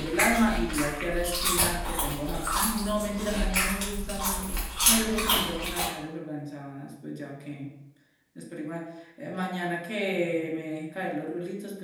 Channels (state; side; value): identical; both; correlation 1.00